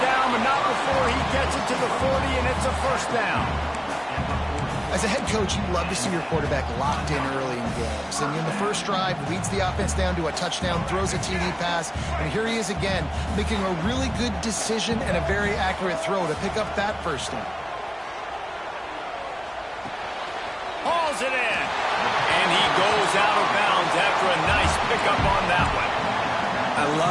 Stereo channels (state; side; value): identical; both; correlation 1.00